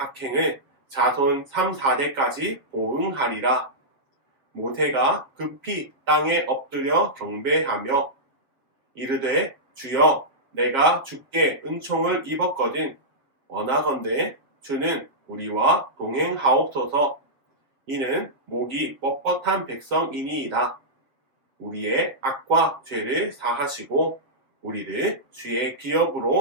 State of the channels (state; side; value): late; left; 7.1 ms